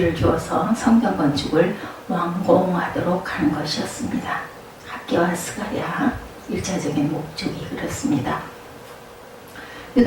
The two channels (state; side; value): identical; both; correlation 1.00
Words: 주어서 성전 건축을 완공하도록 하는 것이었습니다. 학개와 스가랴 1차적인 목적이 그렇습니다.